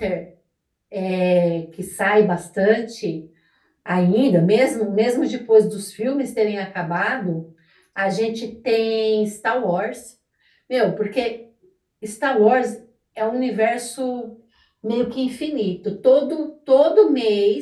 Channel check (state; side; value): identical; both; correlation 1.00